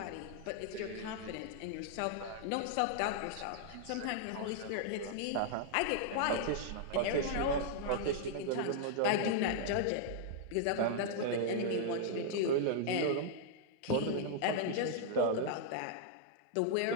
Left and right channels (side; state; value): both; different; correlation -0.01